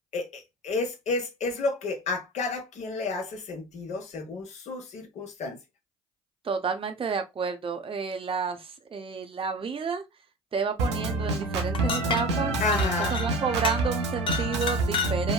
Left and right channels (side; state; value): both; normal; correlation 0.33